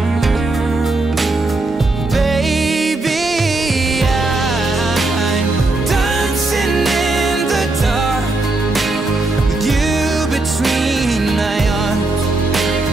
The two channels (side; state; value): left; quieter; 3.0 dB